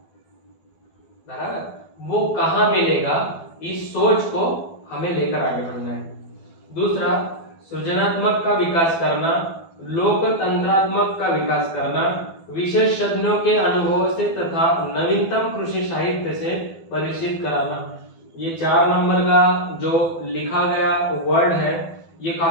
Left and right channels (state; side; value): late; right; 12 ms